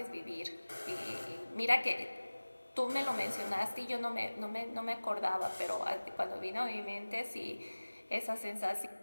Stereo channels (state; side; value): inverted; both; correlation -1.00